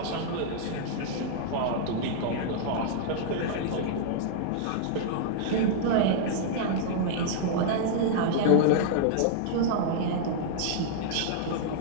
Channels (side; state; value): both; different; correlation -0.01